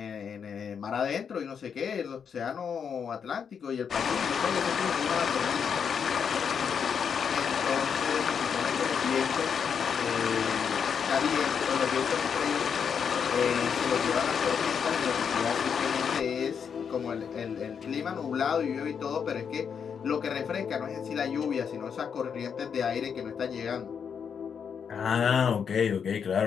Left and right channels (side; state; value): right; quieter; 7.0 dB